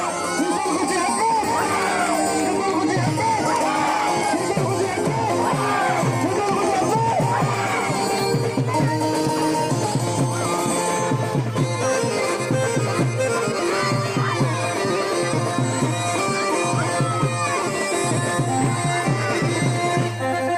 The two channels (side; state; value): both; identical; correlation 1.00